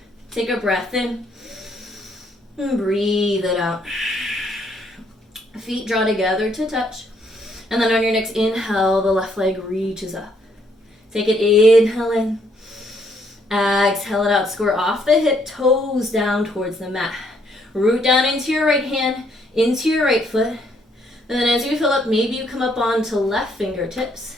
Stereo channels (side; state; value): both; normal; correlation 0.70